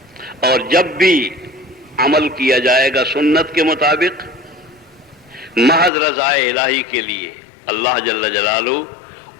اور جب بھی عمل کیا جائے گا سنت کے مطابق محض رضا الہی کے لیے، اللہ جل جلالہ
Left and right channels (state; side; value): drops out; right; at 5.9 s